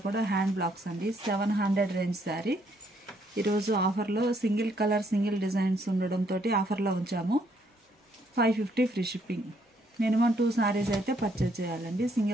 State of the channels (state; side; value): normal; both; correlation 0.70